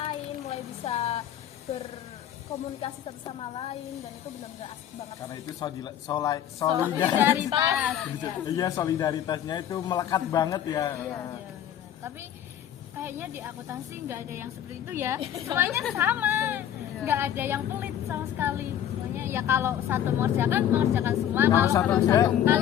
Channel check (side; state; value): right; quieter; 10.5 dB